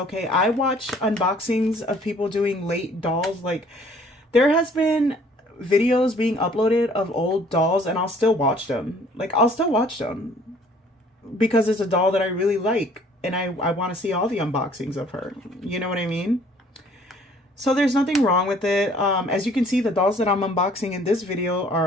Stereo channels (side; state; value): both; normal; correlation 0.57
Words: I watch unboxings of people doing late dolls. Like, there has been videos being uploaded of old dolls and I'll still watch them. Like, I'll still watch them because it's a doll that I really like and I want to see all the unboxings of her. You know what I mean? So there's nothing wrong with it. As you can see, the dolls that I'm unboxing in this video